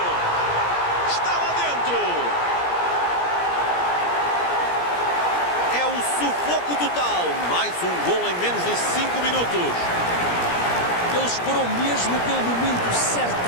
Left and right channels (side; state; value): right; late; 17 ms